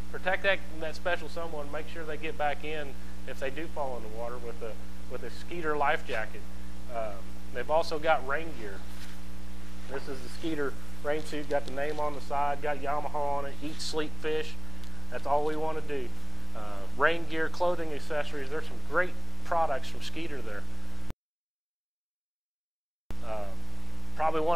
Protect that special someone. Make sure they get back in if they do fall in the water with a Skeeter life jacket. They've also got rain gear. This is the Skeeter rain suit. Got the name on the side. Got Yamaha on it. Eat, sleep, fish. That's all we want to do. Rain gear, clothing, accessories. There's some great products from Skeeter there. Probably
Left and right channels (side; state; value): both; identical; correlation 1.00